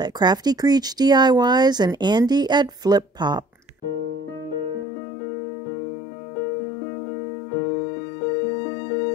at Crafty Creech DIYs and Andy at Flip Pop.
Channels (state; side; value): drops out; right; at 4.9 s